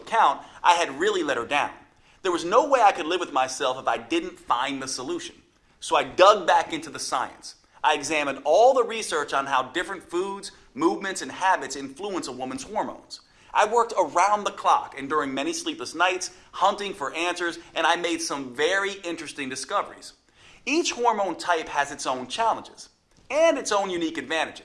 I had really let her down. There was no way I could live with myself if I didn't find the solution. So I dug back into the science. I examined all the research on how different foods, movements, and habits influence a woman's hormones. I worked around the clock and during many sleepless nights, hunting for answers, and I made some very interesting discoveries. Each hormone type has its own challenges and its own unique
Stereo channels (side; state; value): both; identical; correlation 1.00